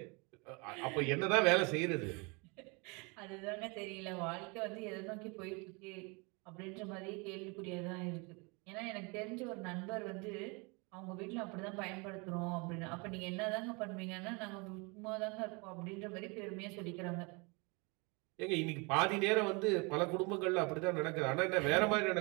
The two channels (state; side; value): quieter; left; 29.7 dB